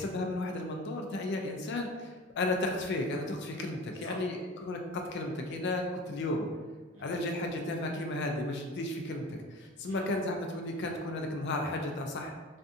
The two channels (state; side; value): normal; both; correlation 0.37